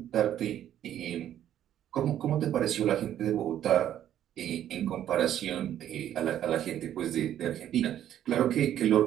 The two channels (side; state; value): left; quieter; 11.1 dB